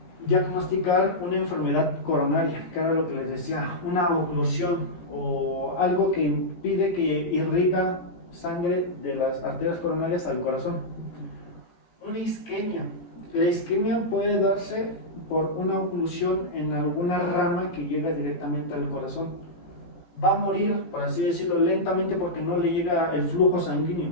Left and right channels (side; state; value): right; late; 17 ms